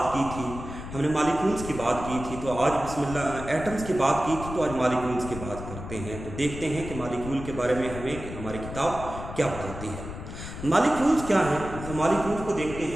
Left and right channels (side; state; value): left; noise; rumble, 10 dB below the sound